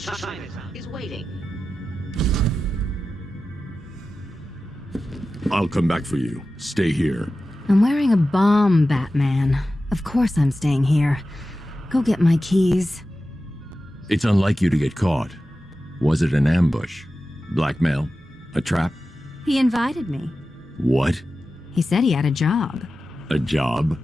I'll come back for you. Stay here. I'm wearing a bomb, Batman. Of course I'm staying here. Go get my keys. It's unlike you to get caught. Was it an ambush? Blackmail? A trap? He invited me. What? He said he had a job. A job?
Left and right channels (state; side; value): normal; both; correlation 0.93